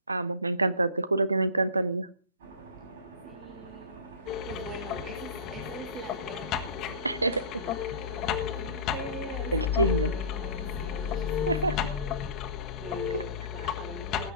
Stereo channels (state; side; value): inverted; both; correlation -0.36